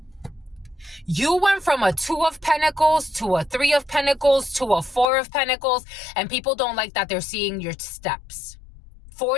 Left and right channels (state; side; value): drops out; right; at 5.1 s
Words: You went from a 2 of Pentacles to a 3 of Pentacles to a 4 of Pentacles, and people don't like that they're seeing your steps.